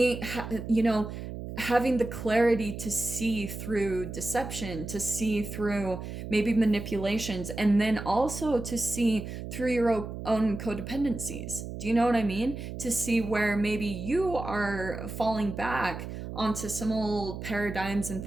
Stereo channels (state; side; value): noise; right; hum, 8 dB below the sound